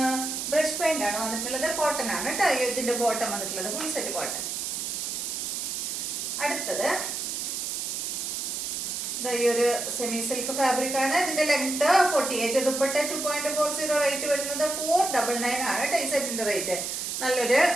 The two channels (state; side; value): noise; right; hiss, 3 dB below the sound